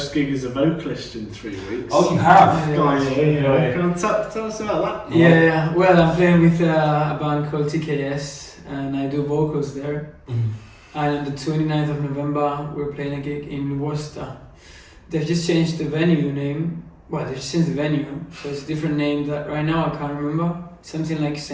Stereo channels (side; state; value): both; identical; correlation 1.00